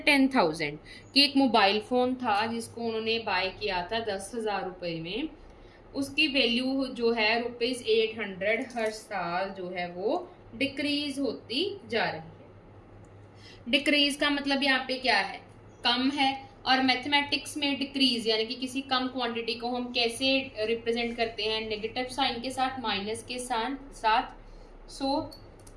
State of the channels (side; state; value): both; identical; correlation 1.00